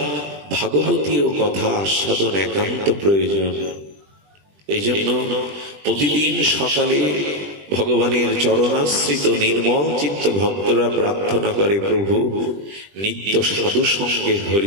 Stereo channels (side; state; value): left; late; 20 ms